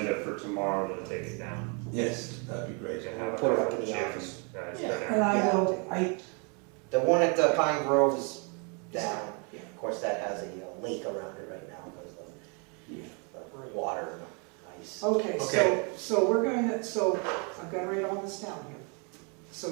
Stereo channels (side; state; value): left; quieter; 35.4 dB